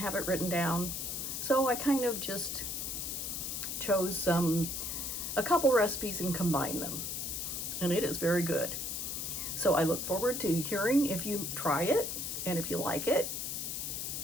it written down. So I kind of just chose a couple recipes and combined them, and it is very good. So I look forward to hearing if you try it, and if you like it,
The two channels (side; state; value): left; noise; hiss, 3 dB below the sound